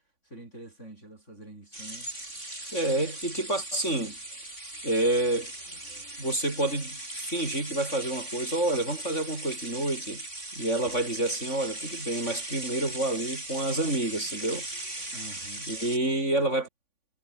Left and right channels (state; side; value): late; right; 3.5 ms